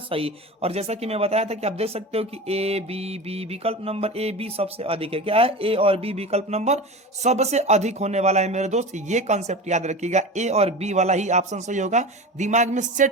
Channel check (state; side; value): normal; both; correlation 0.30